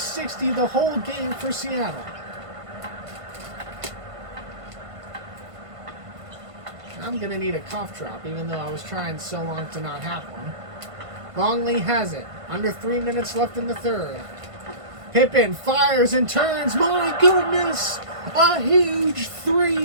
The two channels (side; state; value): left; late; 1.5 ms